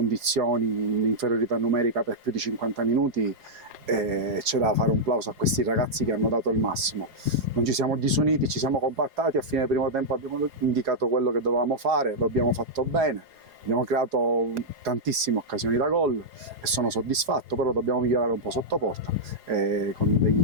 in inferiorità numerica per più di 50 minuti, c'è da fare un plauso a questi ragazzi che hanno dato il massimo. Non ci siamo disuniti, ci siamo compattati, a fine del primo tempo abbiamo indicato quello che dovevamo fare, lo abbiamo fatto bene. Abbiamo creato tantissime occasioni da gol e sono soddisfatto, però dobbiamo migliorare un po' sotto porta con degli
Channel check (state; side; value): late; left; 4.8 ms